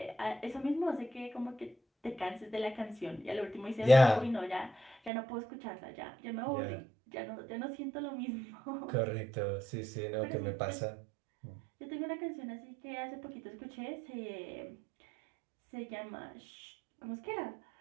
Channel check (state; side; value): drops out; left; at 5.1 s